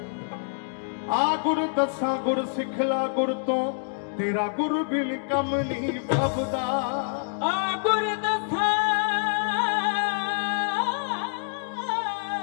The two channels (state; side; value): silent; right; digital silence